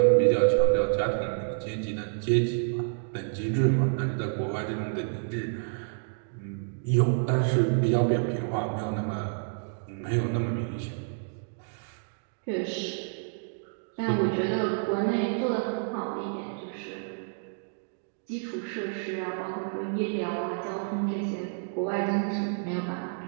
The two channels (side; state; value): left; silent; digital silence